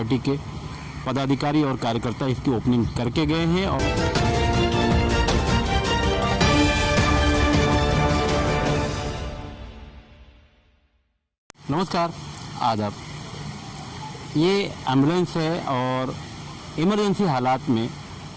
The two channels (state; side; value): identical; both; correlation 1.00